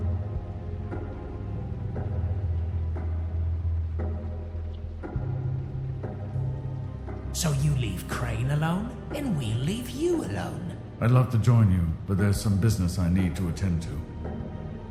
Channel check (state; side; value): identical; both; correlation 1.00